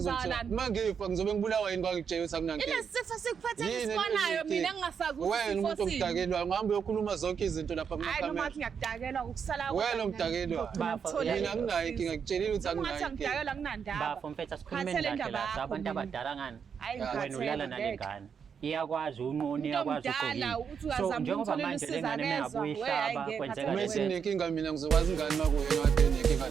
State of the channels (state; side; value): quieter; left; 6.8 dB